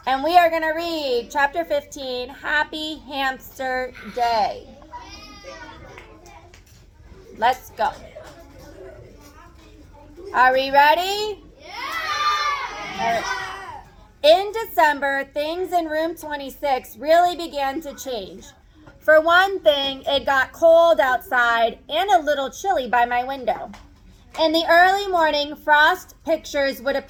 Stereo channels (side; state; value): both; identical; correlation 1.00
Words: gonna read chapter 15, Happy Hamster Day. Let's go. Are we ready? Yeah! In December, things in room 26 really began to change. For one thing, it got cold outside and a little chilly by my window. In the early morning, frost pictures would